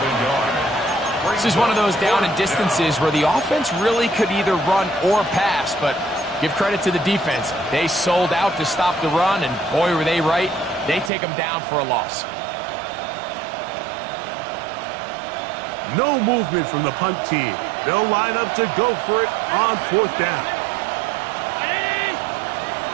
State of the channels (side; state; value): left; drops out; at 11.1 s